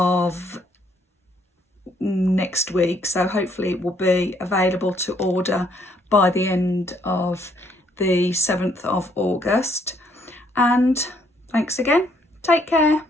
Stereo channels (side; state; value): both; normal; correlation 0.68